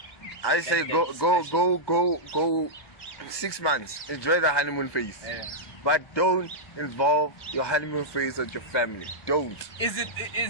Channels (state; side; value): late; right; 1.2 ms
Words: I say go 6 months. Enjoy the honeymoon phase, but don't involve your honeymoon phase with your family. Don't. Is